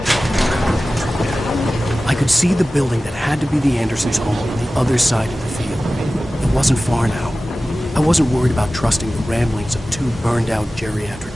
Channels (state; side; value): normal; both; correlation 0.96